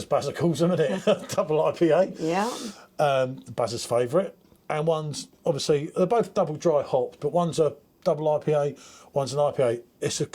Bazza calls them, isn't it? Double IPA. Yeah. Bazza's favourite. And one's obviously, they're both double dry hopped, but one's a double IPA, one's an IPA. It's a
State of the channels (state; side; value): identical; both; correlation 1.00